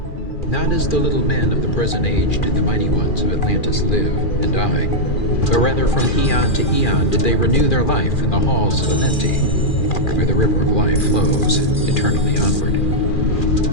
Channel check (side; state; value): right; late; 2.4 ms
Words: Not as the little men of the present age did the mighty ones of Atlantis live and die, but rather from eon to eon did they renew their life in the halls of Amenti, where the river of life flows eternally onward.